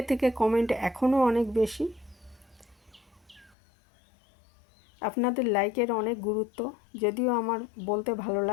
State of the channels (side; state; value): right; drops out; at 3.6 s